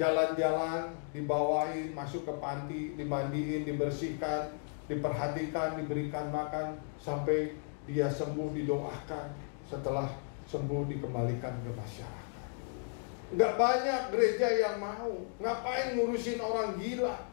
dibawain masuk ke panti, dimandiin, dibersihkan, diperhatikan, diberikan makan, sampai dia sembuh, didoakan. Setelah sembuh dikembalikan ke masyarakat. Nggak banyak gereja yang mau. Ngapain ngurusin orang gila?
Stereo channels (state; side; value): silent; right; 55 dB below the other